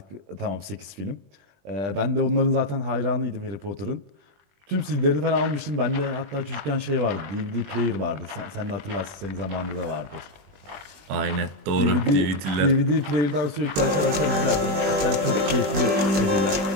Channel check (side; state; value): left; late; 20 ms